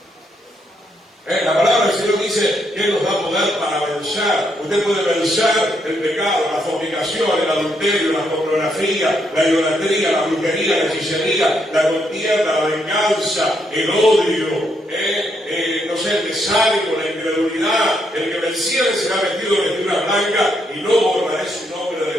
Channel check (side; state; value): both; normal; correlation 0.76